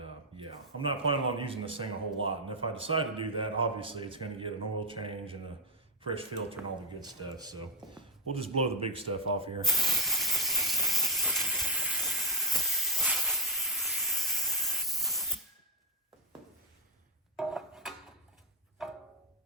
yeah, I'm not planning on using this thing a whole lot. And if I decide to do that, obviously it's gonna get an oil change and a fresh filter and all the good stuff. So we'll just blow the big stuff off here.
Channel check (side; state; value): both; normal; correlation 0.05